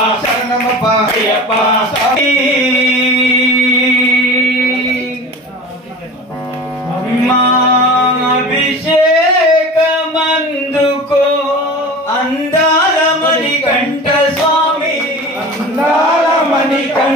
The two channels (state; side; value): normal; both; correlation 0.35